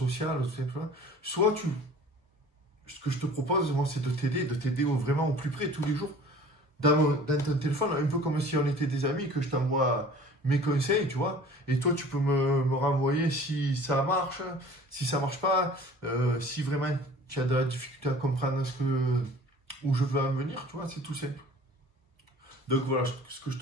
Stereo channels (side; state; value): both; normal; correlation 0.47